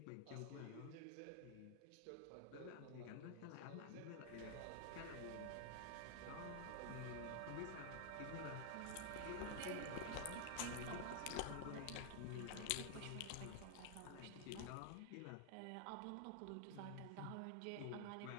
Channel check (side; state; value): both; different; correlation 0.00